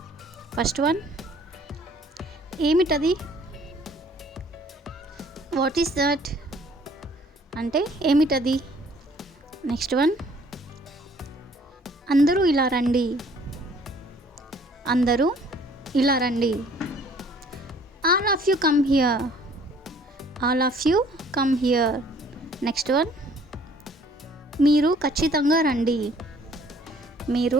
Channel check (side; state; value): both; normal; correlation 0.57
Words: First one, ఏమిటది? వాట్ ఈస్ దట్ అంటే ఏమిటది? నెక్స్ట్ వన్, అందరూ ఇలా రండి. అందరూ ఇలా రండి. All of you come here. All of you come here. Next one, మీరు ఖచ్చితంగా రండి.